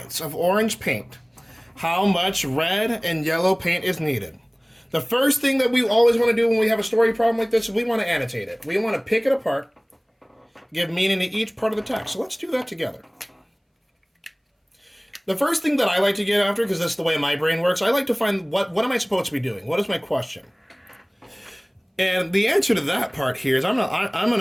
of orange paint, how much red and yellow paint is needed? The first thing that we always want to do when we have a story problem like this is we want to annotate it. We want to pick it apart, give meaning to each part of the text. So let's do that together. The first thing that I like to get after, because that's the way my brain works, I like to find what am I supposed to be doing? What is my question? And the answer to that part here is I'm going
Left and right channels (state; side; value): identical; both; correlation 1.00